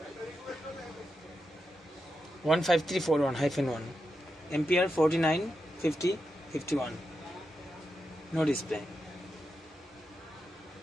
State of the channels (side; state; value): both; normal; correlation 0.87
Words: 15341-1 ampere 495051 no display.